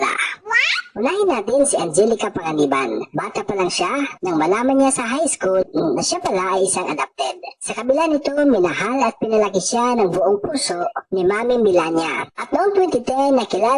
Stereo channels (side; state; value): both; identical; correlation 1.00